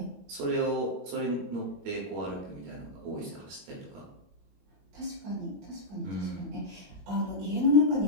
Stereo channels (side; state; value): left; late; 21 ms